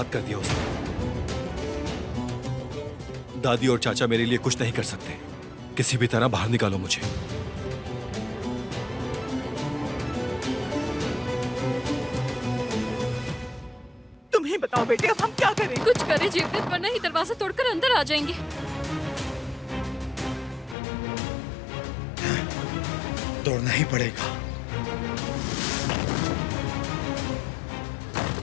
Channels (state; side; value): drops out; right; at 20.8 s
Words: कर दिया उसने। दादी और चाचा मेरे लिए कुछ नहीं कर सकते। किसी भी तरह बाहर निकालो मुझे। तुम ही बताओ बेटे, अब हम क्या करें? कुछ करें जेवदत, वरना ही दरवाजा तोड़कर अंदर आ जाएंगे। तोड़ना ही पड़ेगा।